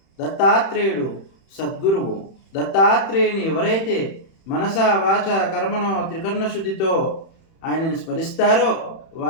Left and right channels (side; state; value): right; late; 31 ms